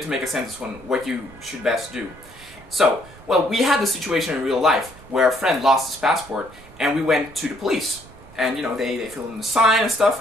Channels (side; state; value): right; noise; rumble, 22 dB below the sound